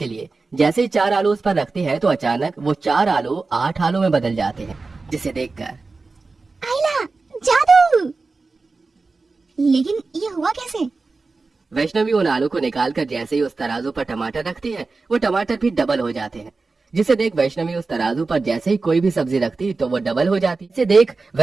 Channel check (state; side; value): quieter; left; 3.9 dB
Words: लिए जैसे ही 4 आलू उस पर रखती है तो अचानक वो 4 आलू 8 आलू में बदल जाते हैं, जिसे देखकर आइला, जादू! लेकिन ये हुआ कैसे? वैष्णवी उन आलू को निकालकर जैसे ही उस तराजू पर टमाटर रखती है वो टमाटर भी डबल हो जाते हैं, जिसे देख वैष्णवी उस तराजू पर जैसे ही कोई भी सब्जी रखती तो वो डबल हो जाती। इसे देख